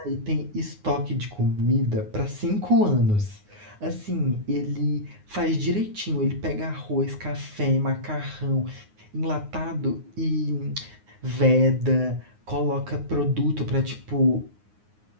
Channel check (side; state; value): left; late; 9.6 ms